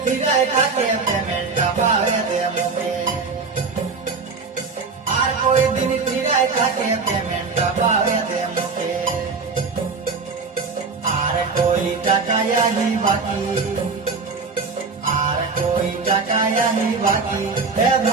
ফিরায় থাকে পেমেন্টটা পাবে দে মুখে আর কই দিন ফিরায় থাকে পেমেন্টটা পাবে দে মুখে আর কই টাকায়াহি বাকি আর কই টাকায়াহি বাকি এ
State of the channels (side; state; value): left; quieter; 4.6 dB